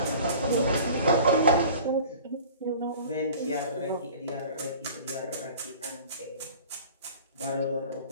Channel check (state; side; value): inverted; both; correlation -0.43